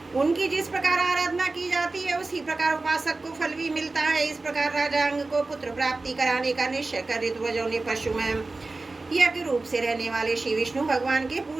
उनकी जिस प्रकार आराधना की जाती है, उसी प्रकार उपासक को फल भी मिलता है। इस प्रकार राजा अंग को पुत्र प्राप्ति कराने का निश्चय कर ऋतुवजों ने पशु में यज्ञ रूप से रहने वाले श्री विष्णु भगवान के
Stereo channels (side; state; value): left; quieter; 3.4 dB